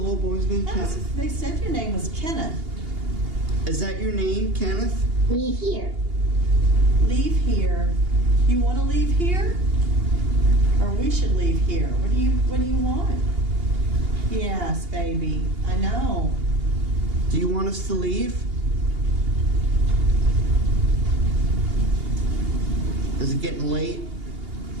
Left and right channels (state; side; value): late; left; 2.8 ms